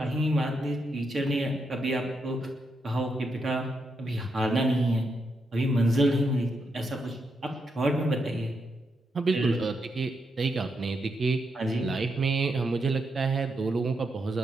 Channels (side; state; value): both; normal; correlation 0.82